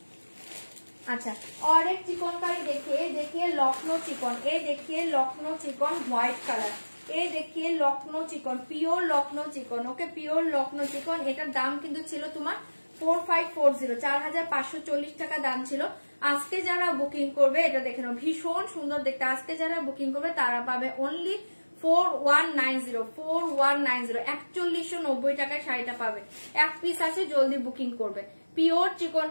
अच्छा, और एक चिकनकारी देखिए लखनऊ चिकन। ये देखिए लखनऊ चिकन व्हाइट कलर। ये देखिए Lucknow chikan, pure Lucknow chikan. Okay, pure Lucknow chikan. एटार दाम किन्तु छिलो तुम्हार 4540, 4540 টাকা দাম ছিল। আজকে যারা বুকিং করবে এটা দেখে নাও, ভীষণ সুন্দর দেখতে। আজকে যারা বুকিং করবে তারা পাবে অনলি 4190, 4190, 4190 টাকায় শাড়িটা পাবে। এক পিস আছে, জলদি বুকিং করবে। পিওর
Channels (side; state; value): both; inverted; correlation -1.00